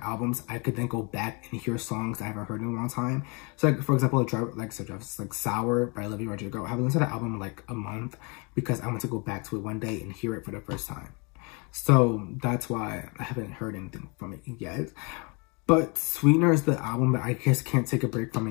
albums, I could then go back and hear songs I haven't heard in a long time. So like, for example, like Sour by Olivia Rodrigo. I haven't listened to that album in like a month because I want to go back to it one day and hear it for the first time. So that's why I haven't heard anything from it yet. But Sweetener is the album that I just can't take a break from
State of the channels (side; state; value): right; quieter; 31.6 dB